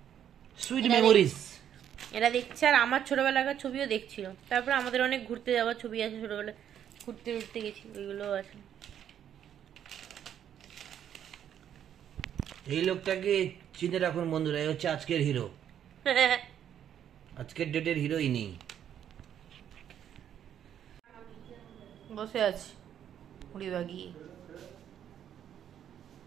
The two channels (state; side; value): quieter; left; 9.7 dB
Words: সুইট মেমোরিজ। এরা দেখছে, আর আমার ছোটবেলাকার ছবিও দেখছিল। তারপরে আমাদের অনেক ঘুরতে যাওয়ার ছবি আছে, ছোটবেলায় ঘুরতে ঘুরতে গেছি, ওইগুলোও আছে। এই লোকটাকে চিনে রাখুন বন্ধুরা, এই হচ্ছে আজকের হিরো, আজকের ডেটের হিরোইনি। বসে আছি মুড়ি বাগিয়ে।